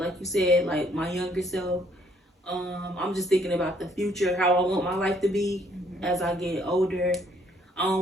you said, like my younger self. I'm just thinking about the future, how I want my life to be as I get older. I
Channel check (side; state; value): both; normal; correlation 0.66